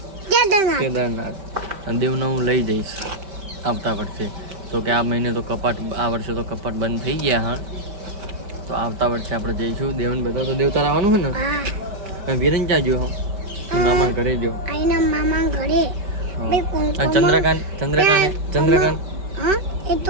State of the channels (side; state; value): left; late; 5.2 ms